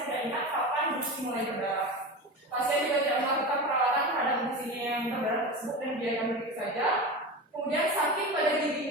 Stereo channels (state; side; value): normal; both; correlation 0.26